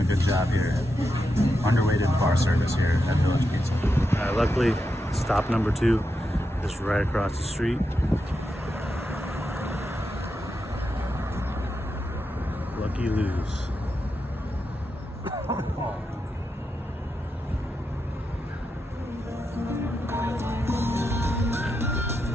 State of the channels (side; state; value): both; normal; correlation 0.86